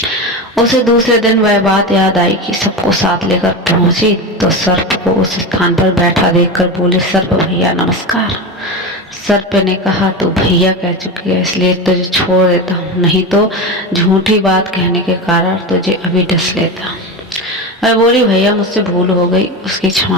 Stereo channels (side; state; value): both; normal; correlation 0.21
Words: उसे दूसरे दिन वह बात याद आई कि सबको साथ लेकर पहुंची तो सर्प को उस स्थान पर बैठा देखकर बोले, सर्प भैया नमस्कार। सर्प ने कहा, तू भैया कह चुकी है, इसलिए तुझे छोड़ देता हूँ, नहीं तो झूठी बात कहने के कारण तुझे अभी डस लेता। मैं बोली, भैया मुझसे भूल हो गई, उसकी